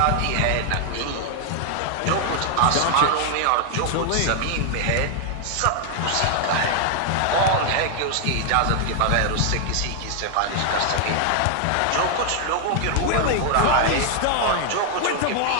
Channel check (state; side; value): different; both; correlation 0.00